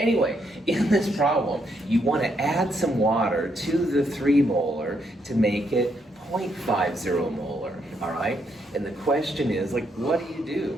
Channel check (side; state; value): both; normal; correlation 0.76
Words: in this problem, you want to add some water to the 3 molar to make it 0.50 molar, all right? And the question is, like, what do you